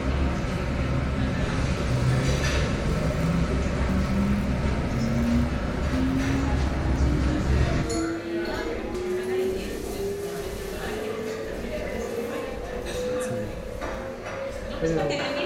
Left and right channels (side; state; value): both; identical; correlation 1.00